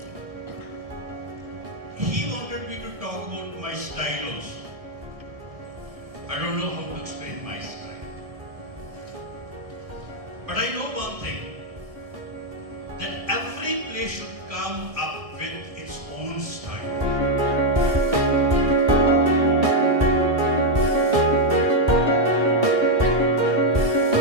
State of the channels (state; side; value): late; left; 1.7 ms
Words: I don't know how to explain my style. But I know one thing, that every play should come up with its own style.